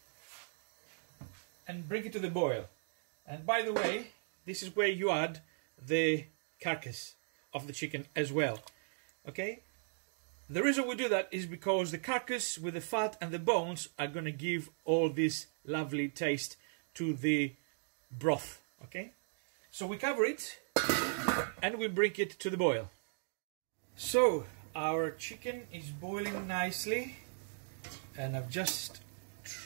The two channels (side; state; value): left; silent; digital silence